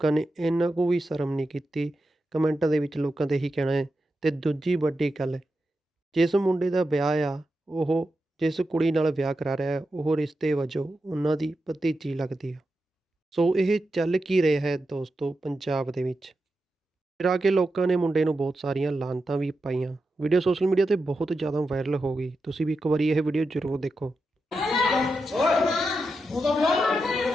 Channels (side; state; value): both; normal; correlation 0.89